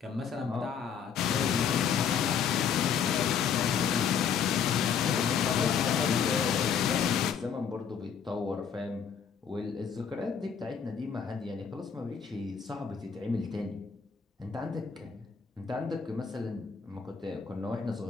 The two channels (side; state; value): right; quieter; 7.1 dB